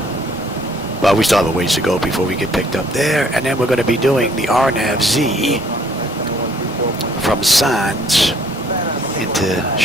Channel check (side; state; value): both; normal; correlation 0.62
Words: But we still have a ways to go before we get picked up there. And then we're going to be doing the RNAV-Z from Sands into